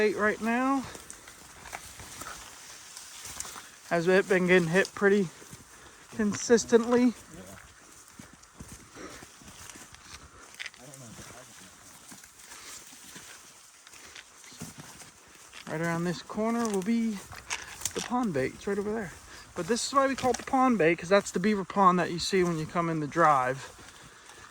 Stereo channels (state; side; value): identical; both; correlation 1.00